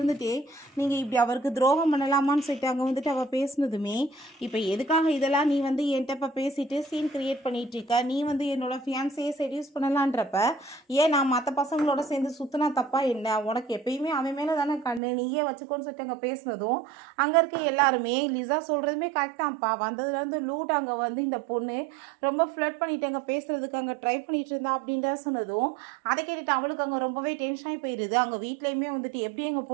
நீங்கள் இப்படி அவருக்கு துரோகம் பண்ணலாமான்னு சொல்லிட்டு அங்கே வந்துட்டு அவள் பேசினதுமே, இப்போ எதுக்காக இதெல்லாம் நீ வந்து என்கிட்ட இப்போ பேசிட்டு சீன் க்ரியேட் பண்ணிகிட்ருக்க, நீ வந்து என்னோடய ஃபியான்ஸையே செடியூஸ் பண்ணலான்றப்ப ஏன் நான் மற்ற பசங்களோட சேர்ந்து சுற்றினா தப்பா என்ன, உனக்கு எப்பயுமே அவன் மேலே தானே கண்ணு, நீயே வச்சுக்கோன்னு சொல்லிட்டு அங்கே பேசினதும் அங்கே இருக்க எல்லாருமே லிசா சொல்கிறதுமே கரெக்டாகப்பா, வந்ததுலேருந்து லூட் அங்கே வந்து இந்த பொண்ணு ரொம்ப ஃப்ளட் பண்ணிட்டு அங்கே பேசுகிறதுக்கு அங்கே ட்ரை பண்ணிகிட்டு இருந்தா அப்படின்ற சொன்னதும் அதை கேட்டுட்டு அவளுக்கு அங்கே ரொம்பவே டென்ஷனாகி போயிடுது. அங்கே வீட்லேயுமே வந்துட்டு எப்படி எங்கள்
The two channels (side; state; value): left; drops out; at 15.0 s